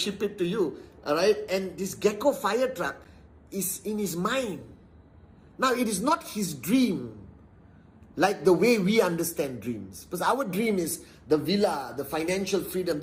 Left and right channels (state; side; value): identical; both; correlation 1.00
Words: it to you." All right, and this Gecko fire truck is in his mind. Now, it is not his dream like the way we understand dreams. Because our dream is the villa, the financial freedom.